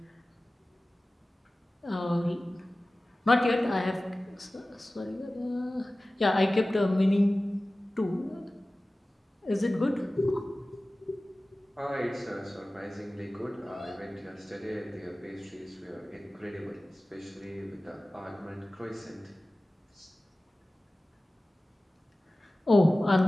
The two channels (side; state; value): both; normal; correlation 0.97